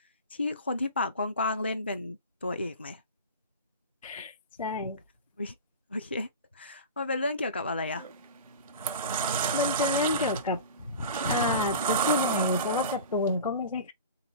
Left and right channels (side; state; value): both; inverted; correlation -0.32